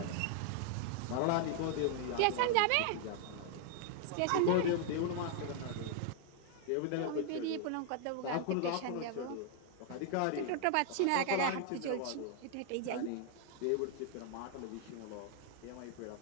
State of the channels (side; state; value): both; different; correlation 0.00